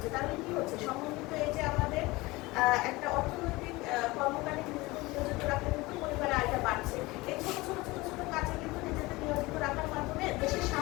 তাহলে কি হচ্ছে, সমন্বিত এই যে আমাদের একটা অর্থনৈতিক কর্মকারী নিয়োজিত রাখলে কিন্তু পরিবারের আয়টা বাড়ছে। এই ছোট ছোট ছোট ছোট কাজে কিন্তু নিজেদের নিয়োজিত রাখার মাধ্যমে দেশের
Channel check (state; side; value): quieter; right; 21.6 dB